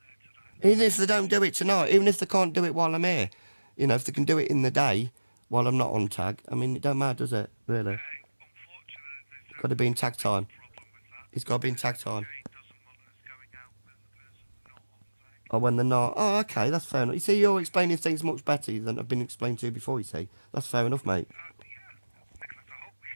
there today. Even if they don't do it tonight, even if they can't do it while I'm here, if they can do it in the day while I'm not on tag, I mean, it don't matter, does it? Really? Unfortunately, there's Got to be in tag time. problem with that. It's got to be in tag time. Jane doesn't want us going out when the person's not on tag. Or when they're not. Oh, okay, that's fair enough. You see, you're explaining things much better than I've been explained to you before, you see. That's fair enough, mate. Nicholas, I hope we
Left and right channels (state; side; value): inverted; both; correlation -1.00